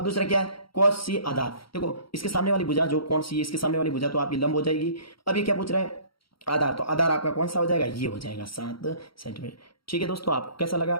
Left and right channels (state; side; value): late; right; 0.74 ms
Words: दूसरा क्या है cos C आधार, देखो इसके सामने वाली भुजा जो कोण C है इसके सामने वाली भुजा, तो आपकी लंब हो जाएगी। अब ये क्या पूछ रहे हैं आधार, तो आधार आपका कौन सा हो जाएगा, ये हो जाएगा 7 सेंटीमीटर। ठीक है दोस्तों, आपको कैसा लगा,